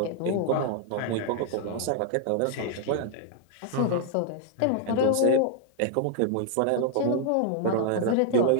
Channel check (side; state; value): both; different; correlation 0.00